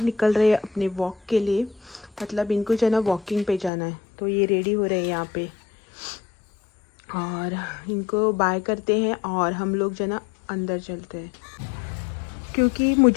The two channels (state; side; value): drops out; right; at 3.7 s